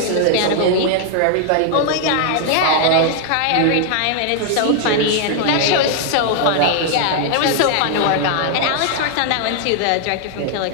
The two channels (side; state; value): both; different; correlation 0.00